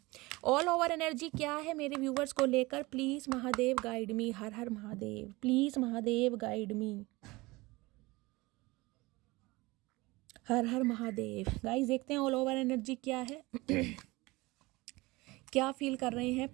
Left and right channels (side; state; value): left; quieter; 22.1 dB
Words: all over energy क्या है मेरे व्यूवर्स को लेकर, please Mahadev guide me. Her her Mahadev, please Mahadev guide me. Her her Mahadev. Guys देखते हैं ऑल ओवर एनर्जी क्या है क्या फील कर रहे हैं,